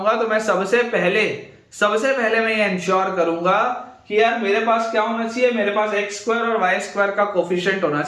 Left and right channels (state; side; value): identical; both; correlation 1.00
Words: तो मैं सबसे पहले मैं ये इंश्योर करूंगा कि यार मेरे पास क्या होना चाहिए, मेरे पास एक्स स्क्वायर और वाई स्क्वायर का कोफिशिएंट होना